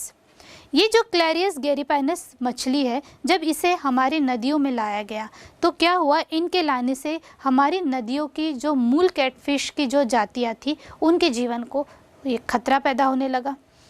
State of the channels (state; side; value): identical; both; correlation 1.00